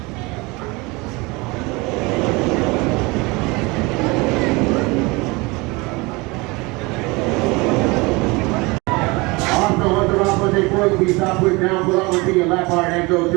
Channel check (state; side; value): quieter; left; 25.1 dB